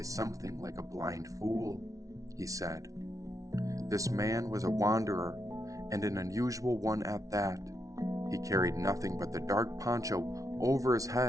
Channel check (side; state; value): left; late; 0.17 ms